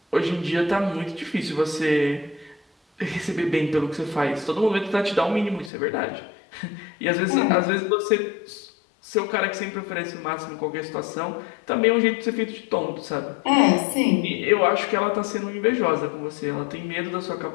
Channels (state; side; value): drops out; right; at 5.7 s